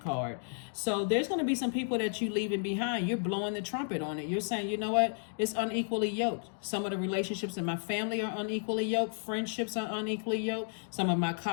So there's going to be some people that you leaving behind. You're blowing the trumpet on it. You're saying, you know what? It's unequally yoked. Some of the relationships in my family are unequally yoked. Friendships are unequally yoked. Some of my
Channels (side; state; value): right; silent; digital silence